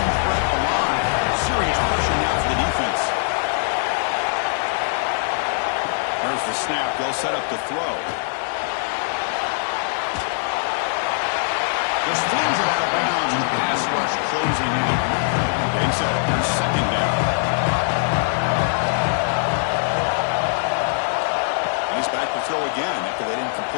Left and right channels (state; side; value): silent; right; 64 dB below the other